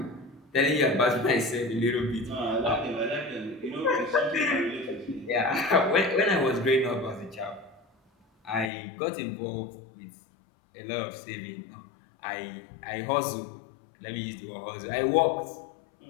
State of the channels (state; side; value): drops out; right; at 8.7 s